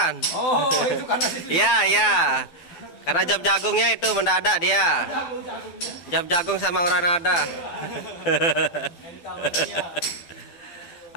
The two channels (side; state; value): right; late; 12 ms